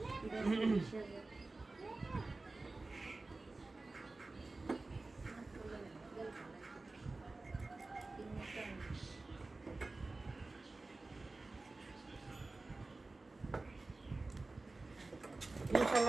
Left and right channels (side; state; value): left; quieter; 3.3 dB